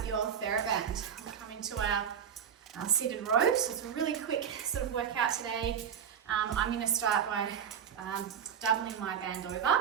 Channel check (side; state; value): left; quieter; 8.1 dB